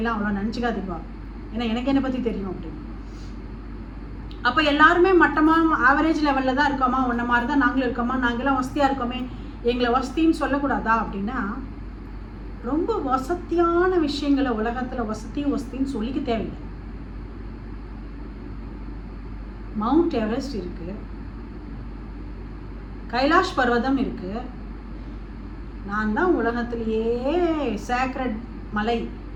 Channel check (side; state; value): both; identical; correlation 1.00